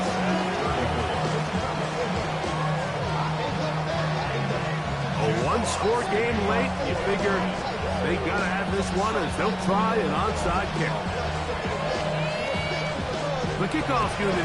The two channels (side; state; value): both; identical; correlation 1.00